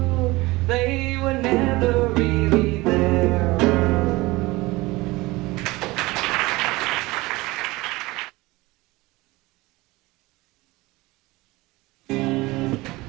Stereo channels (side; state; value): left; quieter; 21.1 dB